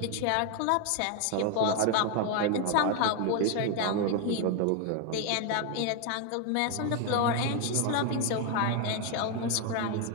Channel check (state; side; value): different; both; correlation 0.01